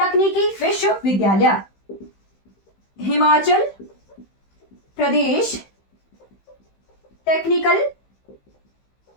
विश्वविद्यालय। हिमाचल प्रदेश टेक्निकल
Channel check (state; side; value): late; right; 15 ms